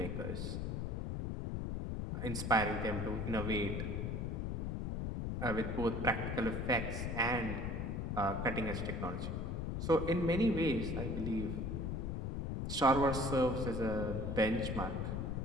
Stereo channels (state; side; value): noise; left; rumble, 2 dB below the sound